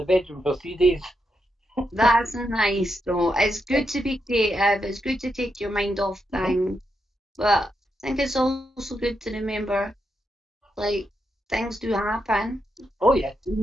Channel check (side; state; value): both; normal; correlation 0.83